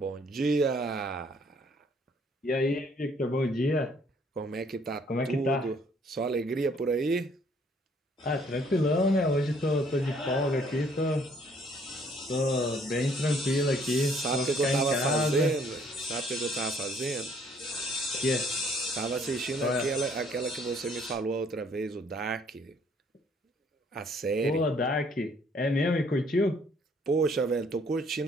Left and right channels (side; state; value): both; normal; correlation 0.63